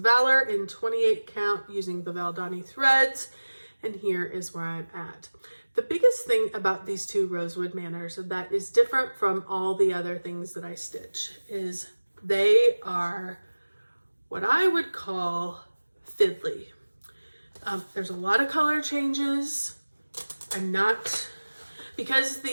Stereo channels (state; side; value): inverted; both; correlation -1.00